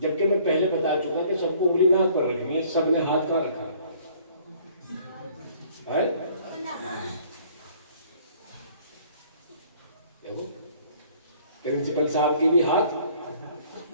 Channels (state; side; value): inverted; both; correlation -0.57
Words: मैं पहले बता चुका कि सबको उंगली नाक पर रखनी है, सबने हाथ कहाँ रखा है? देखो, प्रिंसिपल साहब की भी हाथ